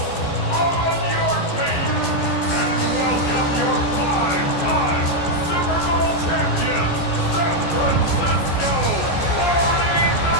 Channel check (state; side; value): late; right; 14 ms